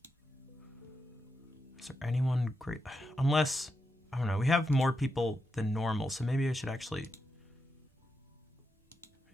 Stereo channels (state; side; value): normal; both; correlation 0.86